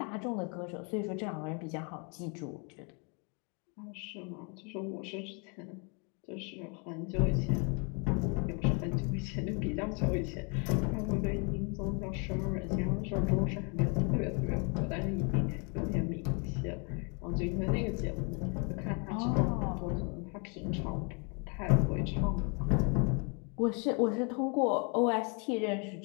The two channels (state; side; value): quieter; right; 35.0 dB